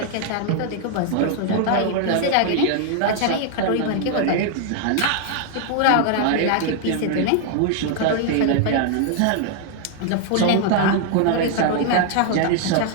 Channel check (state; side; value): different; both; correlation 0.00